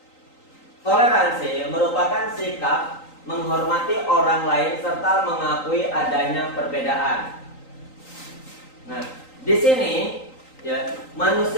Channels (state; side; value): late; right; 3.9 ms